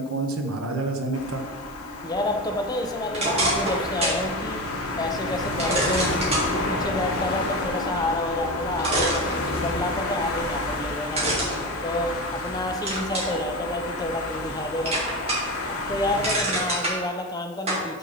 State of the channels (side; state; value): left; noise; hiss, 26 dB below the sound